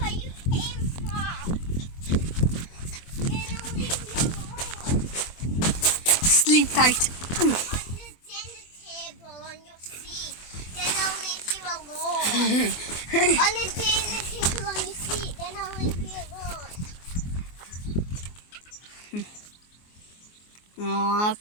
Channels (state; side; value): late; right; 24 ms